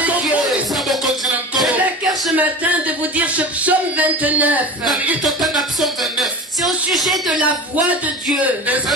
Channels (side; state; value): both; normal; correlation 0.32